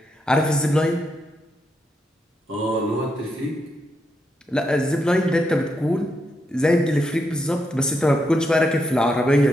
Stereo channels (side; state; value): both; normal; correlation 0.81